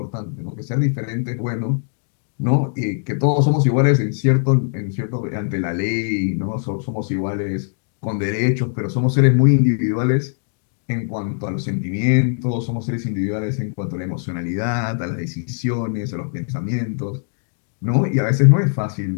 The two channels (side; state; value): right; silent; digital silence